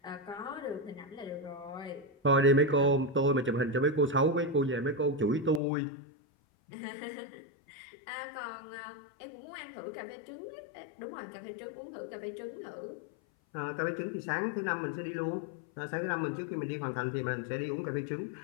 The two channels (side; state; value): right; drops out; at 5.6 s